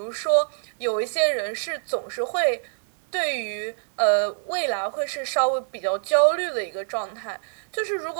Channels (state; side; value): silent; left; digital silence